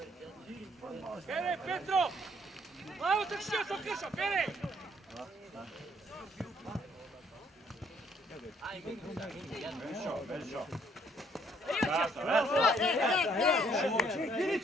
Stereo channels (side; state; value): both; normal; correlation 0.67